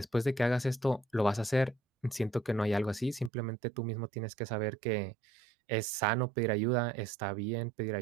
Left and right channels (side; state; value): left; drops out; at 3.3 s